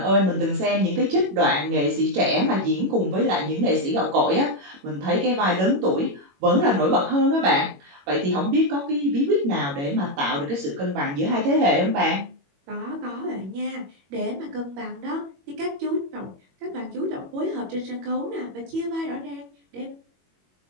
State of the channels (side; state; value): left; late; 21 ms